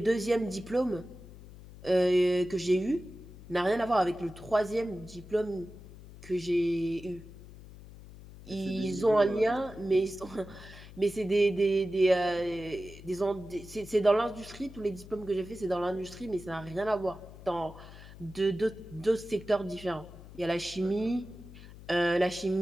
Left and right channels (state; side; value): noise; left; hum, 17 dB below the sound